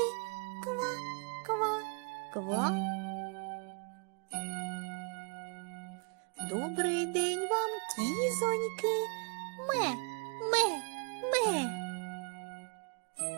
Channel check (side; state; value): left; quieter; 33.6 dB